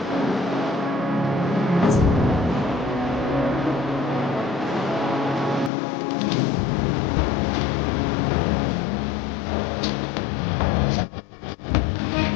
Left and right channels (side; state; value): right; drops out; at 5.7 s